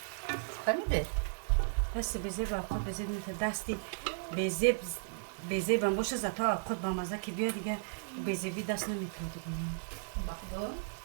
Фаҳмиде? дасти безе ба алхот безе метавон. дасти безе бам боша зато алхот ба маза ки биё дига безеби даст наметавон дига. Бахдо.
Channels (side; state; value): left; silent; 54 dB below the other